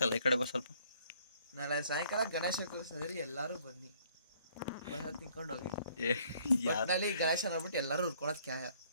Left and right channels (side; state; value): both; inverted; correlation -0.62